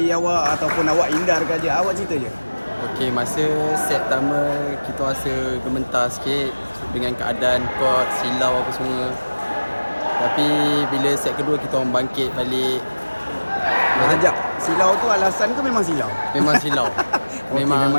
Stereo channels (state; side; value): inverted; both; correlation -1.00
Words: awak ataupun awak hindarkan je? Awak cerita je. Okey, masa set pertama kita rasa gementar sikit dengan keadaan court, silau apa semua. Tapi bila set kedua kita orang bangkit balik. Sekejap. Silau tu alasan ke memang silau? Memang silau.